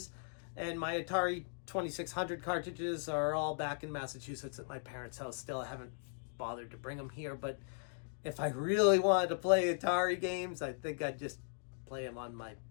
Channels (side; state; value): right; silent; digital silence